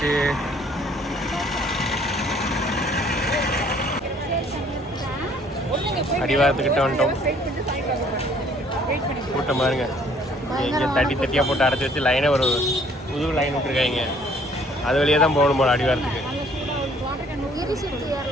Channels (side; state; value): both; normal; correlation 0.59